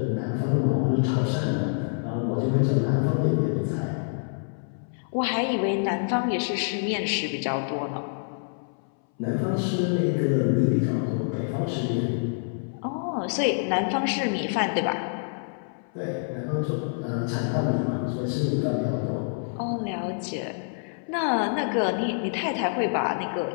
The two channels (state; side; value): silent; right; 60 dB below the other